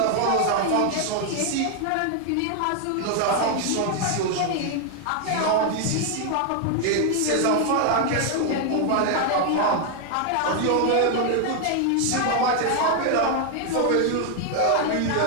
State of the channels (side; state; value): both; different; correlation 0.00